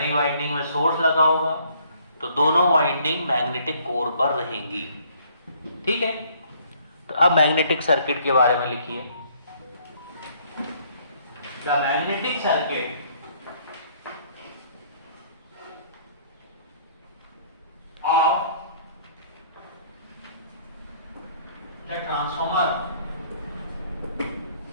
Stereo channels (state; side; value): inverted; both; correlation -0.62